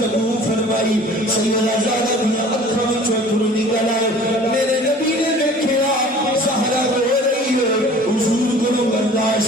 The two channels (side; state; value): both; normal; correlation 0.47